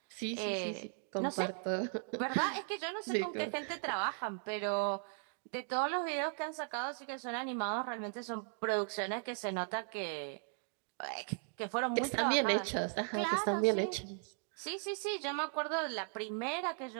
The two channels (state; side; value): silent; left; 53 dB below the other